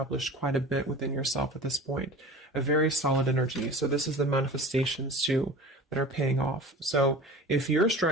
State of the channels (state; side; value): normal; both; correlation 0.38